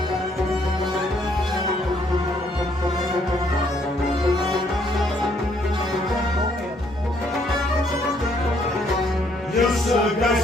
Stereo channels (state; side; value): normal; both; correlation 0.68